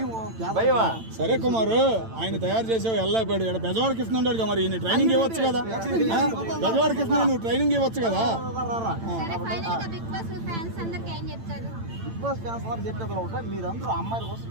భయమా? సరే కుమారు, ఆయన తయారు చేసావు వెళ్ళైపోయాడు. ఇక్కడ బెజవాడకి ఇస్తున్నాడు మరి ఈయన ట్రైనింగ్ ఇవ్వచ్చు కదా. బెజవాడకి ఇస్తున్నా నువ్వు ట్రైనింగ్ ఇవ్వచ్చు కదా. బిగ్ బాస్ ఫ్యాన్స్ అందరూ చెప్పేది ఒకటే, మీరందరూ అమ్మాయిల కోసం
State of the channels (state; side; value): late; left; 8.9 ms